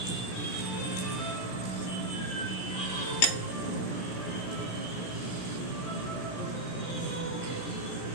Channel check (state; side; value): late; right; 16 ms